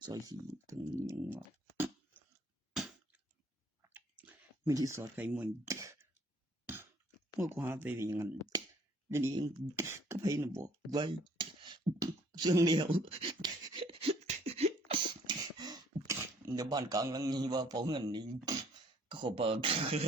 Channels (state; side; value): normal; both; correlation 0.60